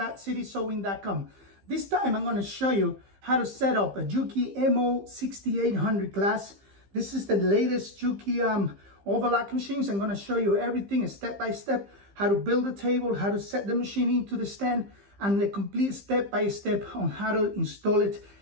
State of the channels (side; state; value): left; late; 15 ms